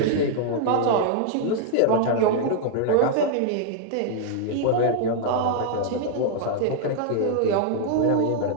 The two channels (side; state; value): both; different; correlation -0.01